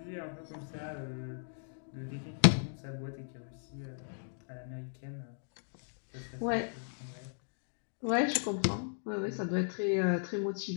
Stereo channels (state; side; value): silent; right; digital silence